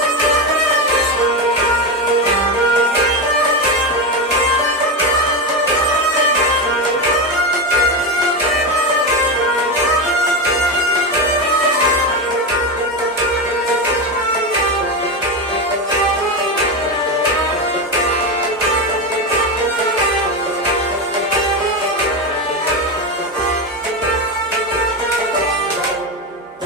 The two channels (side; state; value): both; normal; correlation 0.15